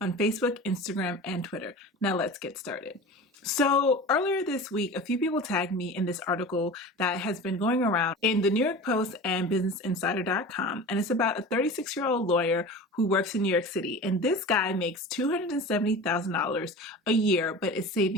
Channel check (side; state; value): both; normal; correlation 0.34